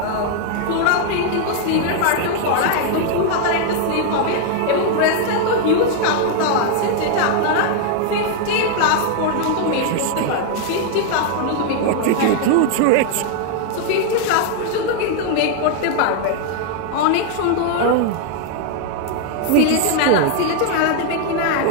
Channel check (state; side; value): different; both; correlation 0.00